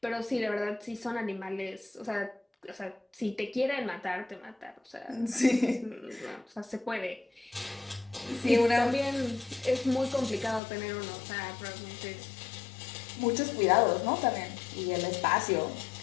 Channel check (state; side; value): drops out; right; at 10.6 s